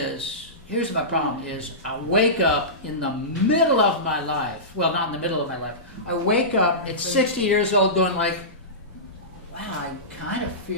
here's my problem is, I wake up in the middle of my life. Well, not in the middle of my life. I wake up at 60 years old going wow, I kind of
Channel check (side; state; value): both; normal; correlation -0.19